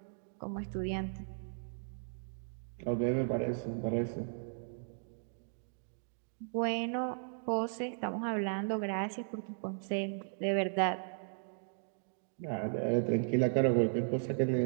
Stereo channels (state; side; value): silent; left; digital silence